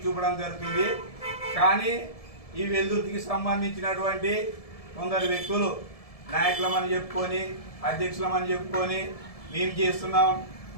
చూపడం జరుగుతుంది. కానీ ఈ వెల్దుర్తికి సంబంధించినటువంటి కొందరు వ్యక్తులు నాయకులమని చెప్పుకొని అధ్యక్షులమని చెప్పుకొని మేము చేస్తున్నాం,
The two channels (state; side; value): late; right; 1.7 ms